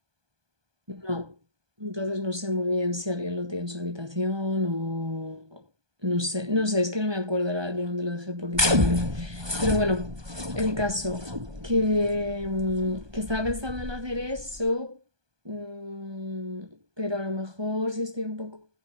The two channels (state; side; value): late; left; 1.2 ms